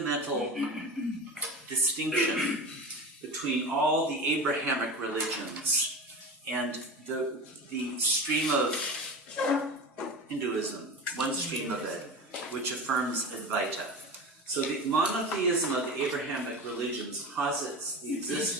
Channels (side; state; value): both; normal; correlation 0.29